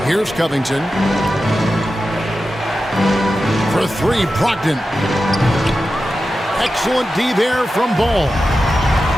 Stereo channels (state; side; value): normal; both; correlation 0.92